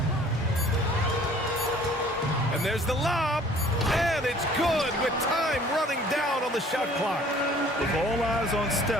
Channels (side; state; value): both; normal; correlation 0.53